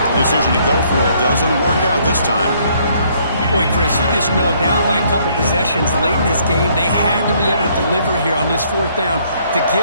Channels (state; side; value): inverted; both; correlation -0.66